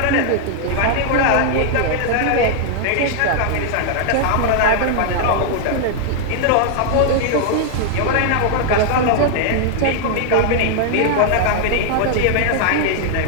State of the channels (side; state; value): both; different; correlation 0.00